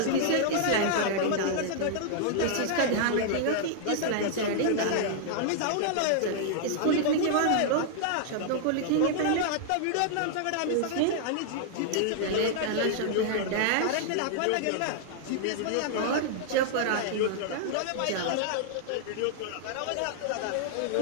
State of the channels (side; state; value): both; different; correlation -0.01